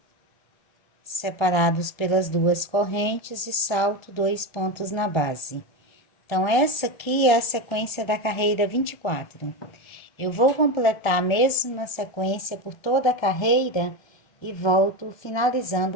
separados pelas 2 correntes e salto 2 pontos na base. Então, essa aqui é a sequência da carreira 24. Eu vou completar a mesma sequência por toda a carreira e volto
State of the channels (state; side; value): late; right; 1.3 ms